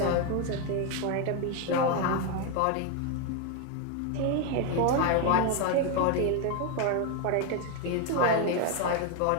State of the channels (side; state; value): both; different; correlation 0.01